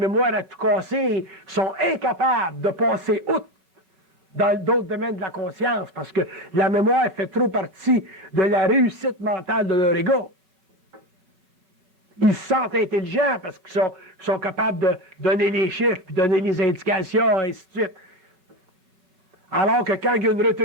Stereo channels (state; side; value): late; left; 4.8 ms